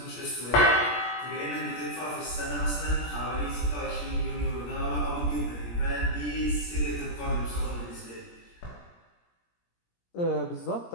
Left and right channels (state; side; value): late; right; 17 ms